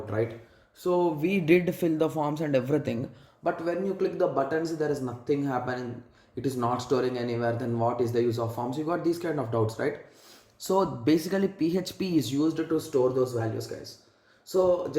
right? So we did fill the forms and everything, but when you click the buttons, there is nothing happening. It is not storing anywhere. Then what is the use of forms? You got these kind of doubts, right? So basically, PHP is used to store those values, guys. So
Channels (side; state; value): both; identical; correlation 1.00